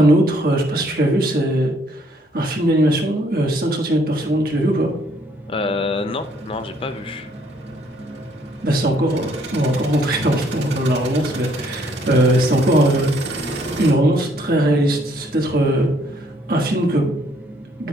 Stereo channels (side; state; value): both; normal; correlation 0.66